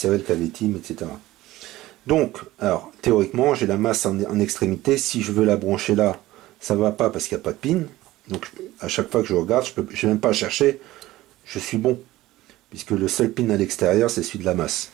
le KV-Team, etc. Donc, alors, théoriquement, j'ai la masse en extrémité. Si je veux la brancher là, ça ne va pas parce qu'il n'y a pas de pin. Donc, à chaque fois que je regarde, je n'ai même pas à chercher. Je suis bon. Puisque le seul pin à l'extérieur, c'est celui de la masse.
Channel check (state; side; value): quieter; left; 16.8 dB